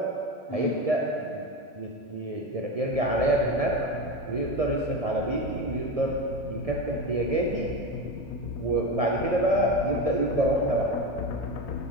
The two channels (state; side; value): normal; both; correlation 0.20